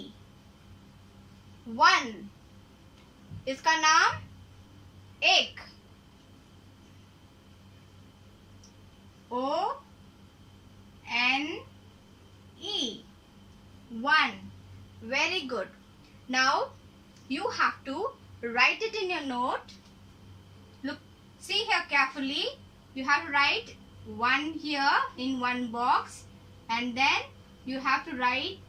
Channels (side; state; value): both; identical; correlation 1.00